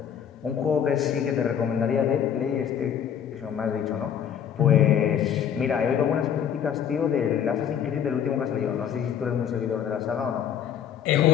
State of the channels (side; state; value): right; quieter; 8.7 dB